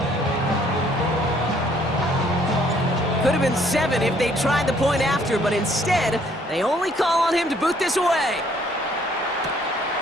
Could have been 7 if they tried the point after, but instead, they only call on him to boot this away.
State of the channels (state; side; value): normal; both; correlation 0.63